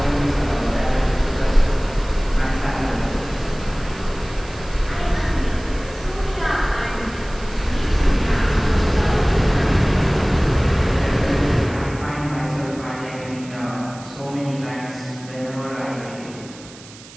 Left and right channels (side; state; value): right; noise; hiss, 19 dB below the sound